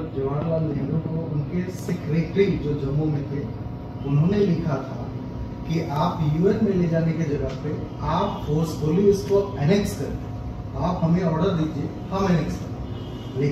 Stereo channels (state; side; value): identical; both; correlation 1.00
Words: जवाहरलाल नेहरू को उनके सेक्रेटरी जो जम्मू में थे उन्होंने लिखा था कि आप यूएन में ले जाने की जगह पे आप फोर्सफुली इसको एनेक्स करें, आप हमें ऑर्डर दीजिए, हम एनेक्स करें।